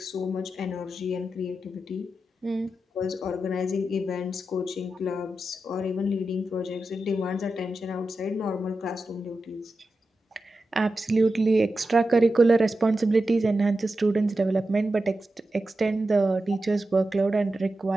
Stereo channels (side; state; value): both; normal; correlation 0.90